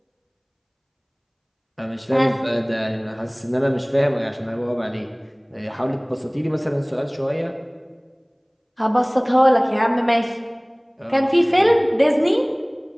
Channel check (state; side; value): identical; both; correlation 1.00